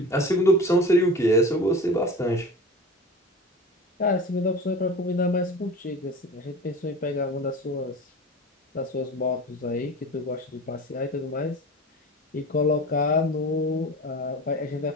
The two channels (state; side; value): normal; both; correlation 0.35